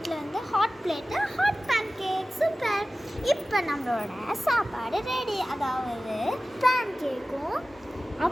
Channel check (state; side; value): normal; both; correlation 0.96